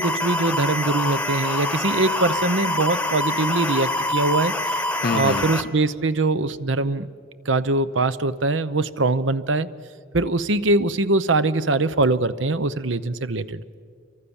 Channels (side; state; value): both; normal; correlation 0.20